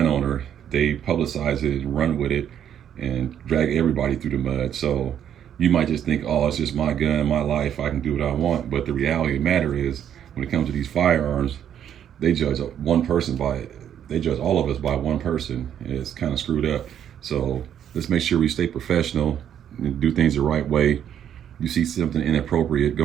owner, they publicize it and run with it and drag everybody through the mud. So you might just think, oh, it's just my gun, my life, I can do what I want. But the reality of the matter is, when it comes to these firearms, they judge one person by it. They judge all of us by one person. It's kind of screwed up. So let's make sure we stay professional and do things the right way. You see something inappropriate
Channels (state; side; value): quieter; left; 9.6 dB